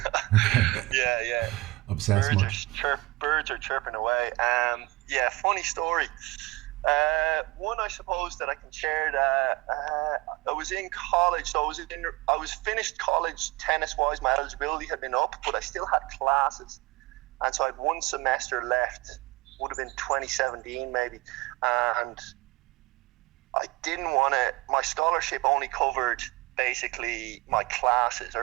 Yeah. Obsessed much? Birds are chirping away. Funny story. One I suppose that I can share. I was in college, so I was finished college tennis wise. My eligibility had been up, but I still had classes, and so I had 1 semester left. Would have been 2017 maybe, and I didn't want to. My scholarship only covered basically my classes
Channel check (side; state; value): left; quieter; 21.1 dB